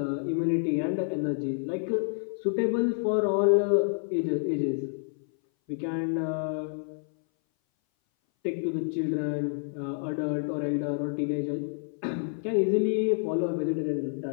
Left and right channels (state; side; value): silent; right; 58 dB below the other